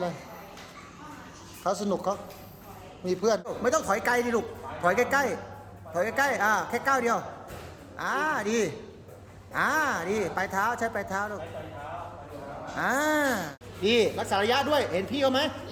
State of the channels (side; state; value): both; identical; correlation 1.00